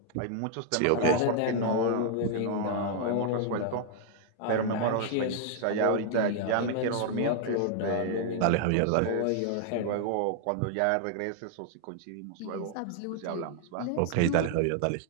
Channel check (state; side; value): different; both; correlation 0.00